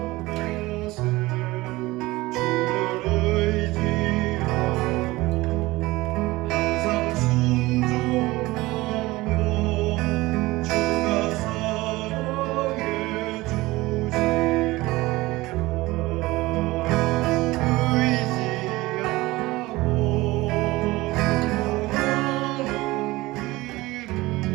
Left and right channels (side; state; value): left; quieter; 19.8 dB